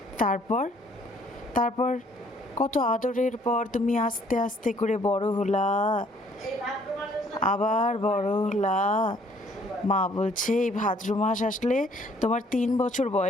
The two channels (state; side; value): normal; both; correlation 0.61